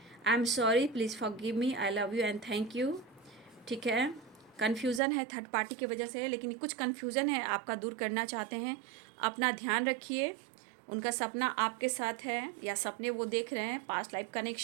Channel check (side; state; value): left; drops out; at 5.0 s